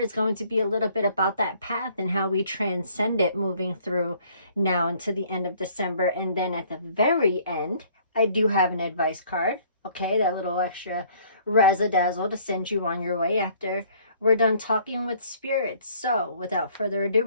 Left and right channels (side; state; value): both; inverted; correlation -0.59